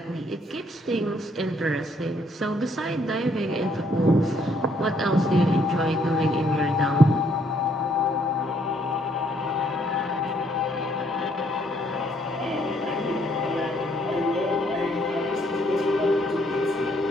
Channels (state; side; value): normal; both; correlation 0.68